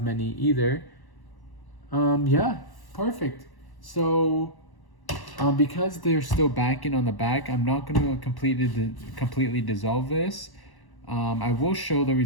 many either. Yeah, perfect. So because they're still backing on the back, I'm not going to completely dissolve this. I will show the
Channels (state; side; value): late; right; 1.1 ms